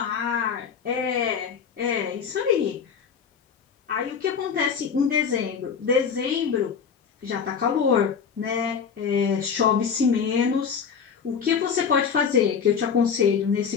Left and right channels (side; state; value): right; quieter; 6.6 dB